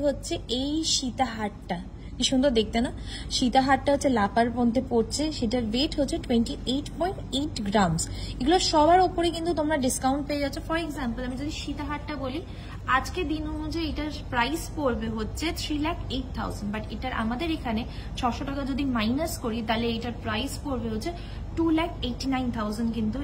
হচ্ছে এই সীতা হারটা, কি সুন্দর দেখতে না? সীতা হারটা হচ্ছে লাপার মধ্যে পড়ছে, সেটার ওয়েট হচ্ছে 28.8 গ্রামস। এগুলো সবার ওপরে কিন্তু তোমরা ডিসকাউন্ট পেয়ে যাচ্ছ। ফর এক্সাম্পল আমি যদি সীতা হারটা বলি, আজকে দিন অনুযায়ী এটার প্রাইস পড়বে হচ্ছে 3,08,000, বাট এটার আমাদের এখানে 600 টাকা যদি মাইনাস করি তাহলে এটার প্রাইস পড়বে হচ্ছে 2,89,000 কিন্তু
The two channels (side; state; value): both; identical; correlation 1.00